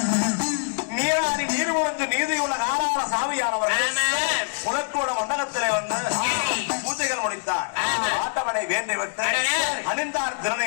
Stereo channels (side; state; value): right; silent; 62 dB below the other